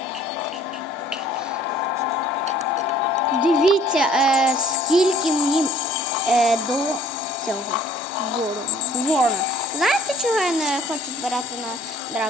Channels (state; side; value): normal; both; correlation 0.56